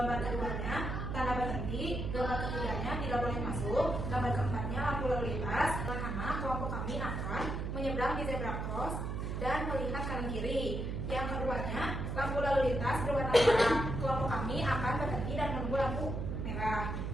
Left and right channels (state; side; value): noise; right; hum, 3 dB below the sound